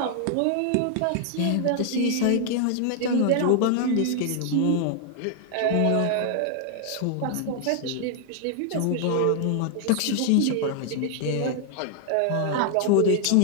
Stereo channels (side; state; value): both; different; correlation 0.00